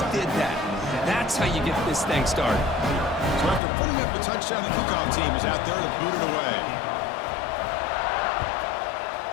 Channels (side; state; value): right; drops out; at 3.6 s